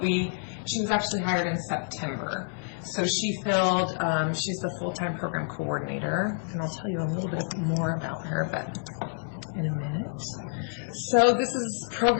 she was actually hired in September. So she filled, she's the full-time program coordinator, and I'll tell you a little bit more about her, but in a minute. So this is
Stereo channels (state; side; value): silent; right; 59 dB below the other